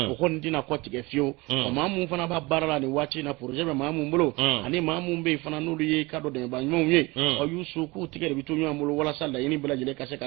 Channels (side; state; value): left; quieter; 23.4 dB